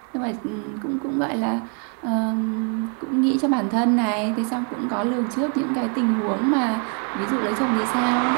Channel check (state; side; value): quieter; left; 39.1 dB